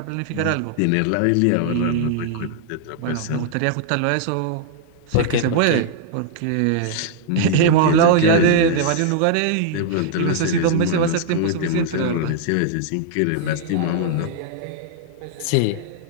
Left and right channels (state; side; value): different; both; correlation -0.01